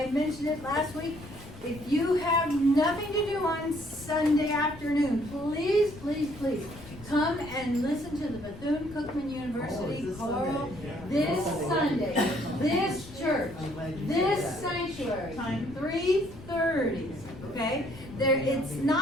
mentioned it last week, if you have nothing to do on Sunday afternoon, please come and listen to the Bethune-Cookman University choral this Sunday, this church, this sanctuary, 3:30, okay? It's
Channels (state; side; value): noise; left; rumble, 17 dB below the sound